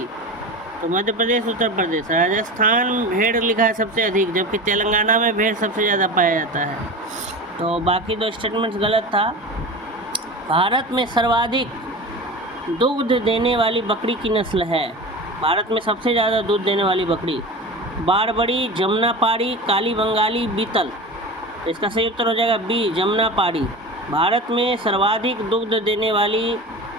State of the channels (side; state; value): both; normal; correlation 0.30